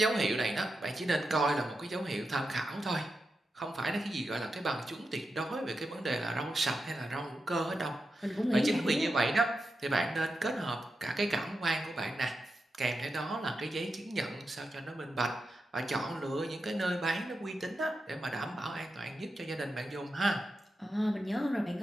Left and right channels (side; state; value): both; normal; correlation 0.88